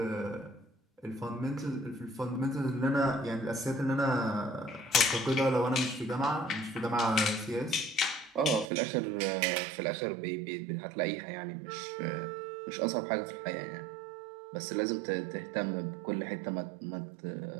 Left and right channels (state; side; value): drops out; left; at 8.7 s